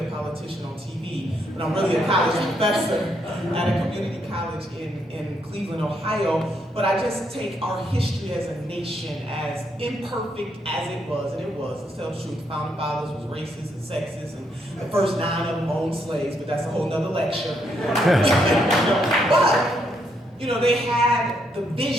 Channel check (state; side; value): normal; both; correlation 0.75